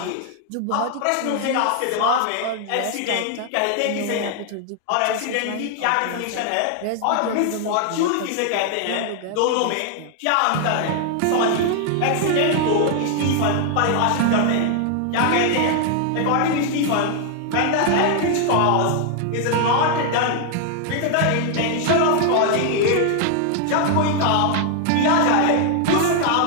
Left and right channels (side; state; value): both; different; correlation 0.00